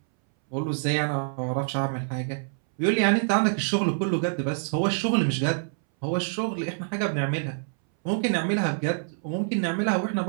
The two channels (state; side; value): silent; left; 61 dB below the other